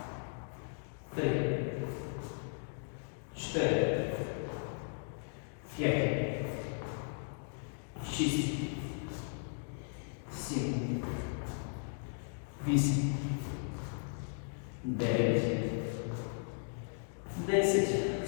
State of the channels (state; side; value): silent; right; digital silence